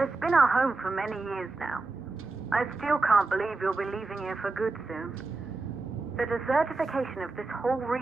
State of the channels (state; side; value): quieter; left; 3.5 dB